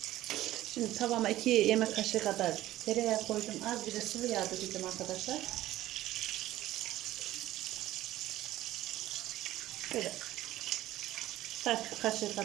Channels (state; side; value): quieter; left; 15.0 dB